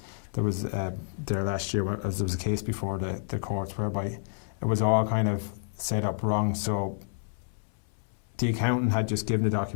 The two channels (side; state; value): right; silent; 58 dB below the other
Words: there was there last year, as there was a case before the courts whereby it was all kind of set up wrong. So the accountant had just given the